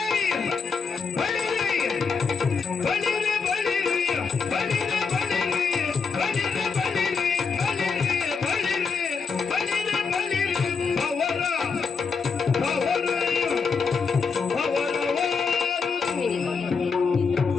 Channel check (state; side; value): quieter; right; 5.4 dB